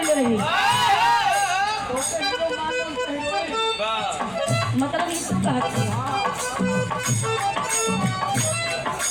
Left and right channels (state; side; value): noise; right; hum, 25 dB below the sound